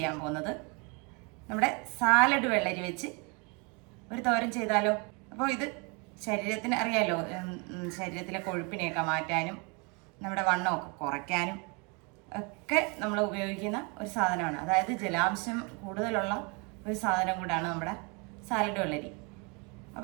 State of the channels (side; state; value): left; quieter; 31.5 dB